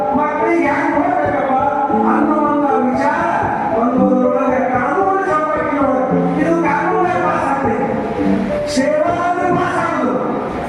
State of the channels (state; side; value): identical; both; correlation 1.00